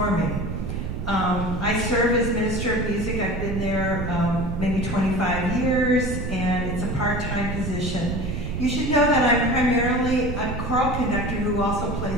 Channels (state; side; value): noise; right; rumble, 4 dB below the sound